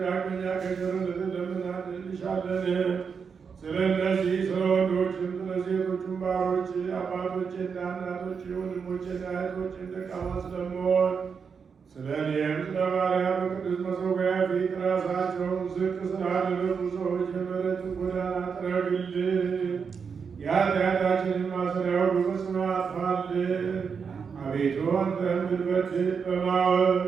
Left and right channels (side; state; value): left; quieter; 6.1 dB